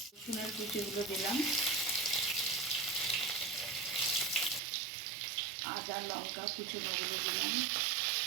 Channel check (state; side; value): drops out; left; at 4.6 s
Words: রসুনের কুচিগুলো দিলাম, আদা লঙ্কা কুচোনোগুলো দিলাম,